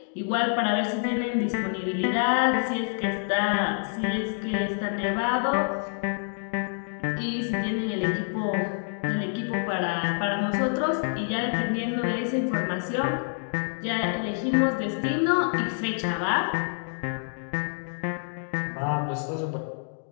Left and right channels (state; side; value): silent; right; 60 dB below the other